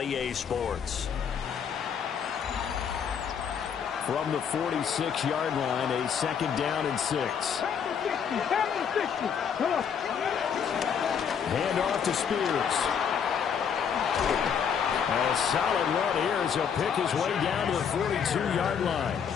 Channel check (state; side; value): quieter; right; 7.4 dB